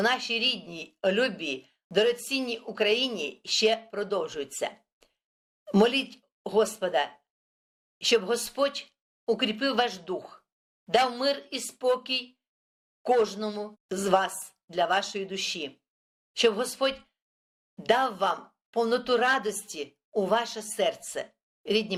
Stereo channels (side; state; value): both; identical; correlation 1.00